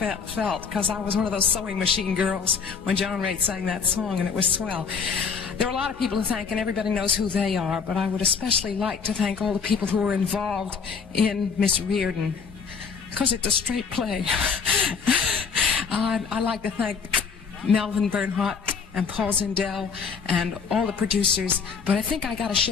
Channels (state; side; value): quieter; right; 5.8 dB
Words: because I was one of those sewing machine girls when John Raitt sang that song, and it was swell. There are a lot of people to thank, and everybody knows who they are, but I would especially like to thank all the people who were involved in Miss Reardon, because it's a straight play. I'd like to thank Melvin Bernhardt and Paul Zindel and all the producers, but I think I got to